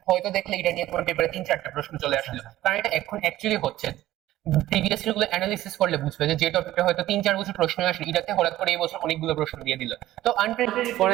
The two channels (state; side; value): quieter; left; 14.8 dB